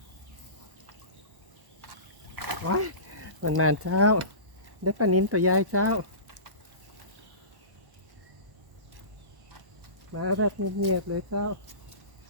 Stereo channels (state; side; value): late; left; 1.1 ms